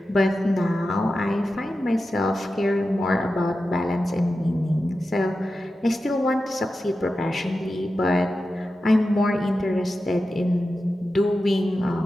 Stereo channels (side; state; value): both; normal; correlation 0.92